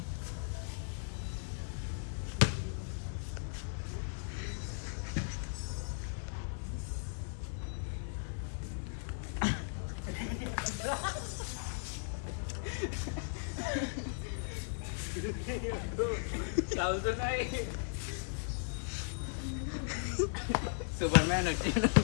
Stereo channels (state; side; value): silent; right; digital silence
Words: సూపర్ మ్యాన్ వచ్చాడు.